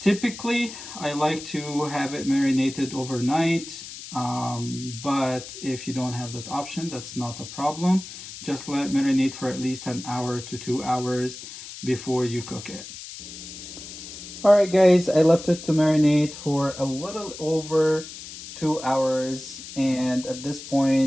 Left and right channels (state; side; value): noise; left; hiss, 12 dB below the sound